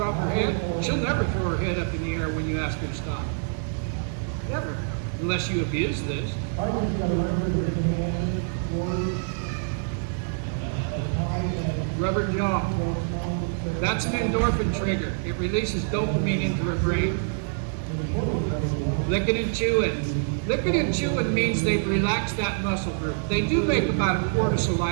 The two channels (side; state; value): left; silent; digital silence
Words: her head, she'll never throw her head up in the air when you ask her to stop. Never. Unless you abuse this. Rubber jaw. That's an endorphin trigger. It releases dopamine into her brain. Licking and chewing. Licking and chewing means they've relaxed that muscle group. They do make about a quart of